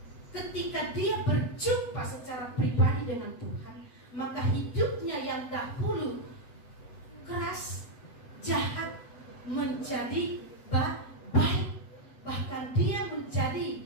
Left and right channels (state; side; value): late; right; 8.0 ms